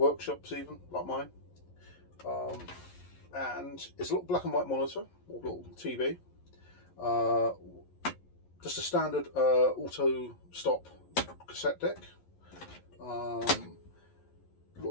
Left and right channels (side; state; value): right; late; 11 ms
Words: even, like mine. And it's a little black and white monitor, or little TV. Just a standard auto stop cassette deck.